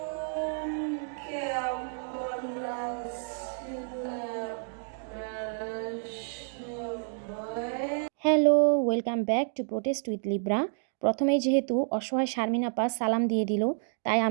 Hello, welcome back to protest with Libra. প্রথমেই যেহেতু অসহায় শারমিন আপা সালাম দিয়ে দিল, তাই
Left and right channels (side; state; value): left; silent; digital silence